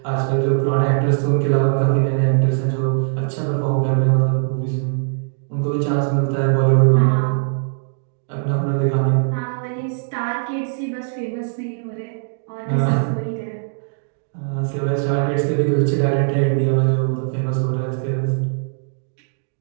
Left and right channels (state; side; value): silent; left; digital silence